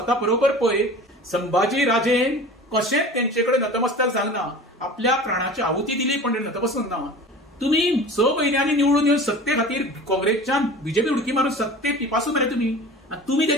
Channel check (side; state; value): both; normal; correlation 0.39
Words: बरोबर पळय. संभाजी राजेन कशेंच तेंचे कडेन नतमस्तक जावना. आपल्या प्राणाची आहुती दिली पण नतमस्तक ना. तुम्ही 6 म्हयन्यांनी निवडून येवन सत्ते खातीर काँग्रेसच्यान बीजेपी उडकी मारून सत्ते पिपासून मरे तुम्ही. आणि तुम्ही